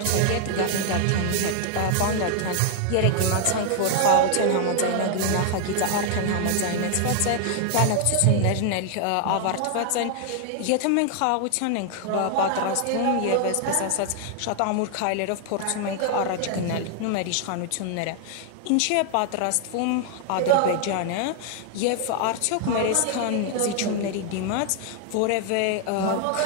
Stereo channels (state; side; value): different; both; correlation 0.00